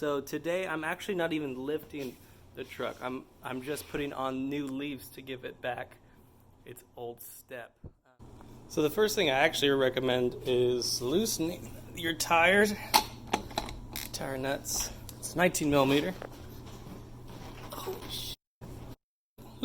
today I'm actually not even lifting the truck. I'm just putting on new leaves to give it back its old step. So the first thing I actually recommend is loosening your tire nuts. It's 19 millimeter. Holy shit.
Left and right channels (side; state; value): both; identical; correlation 1.00